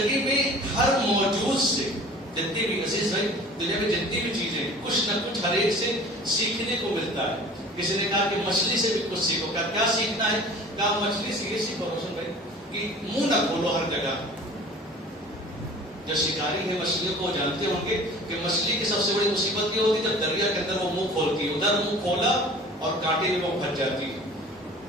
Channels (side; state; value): both; normal; correlation 0.45